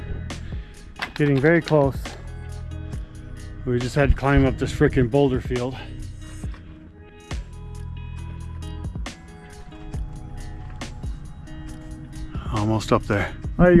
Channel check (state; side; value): identical; both; correlation 1.00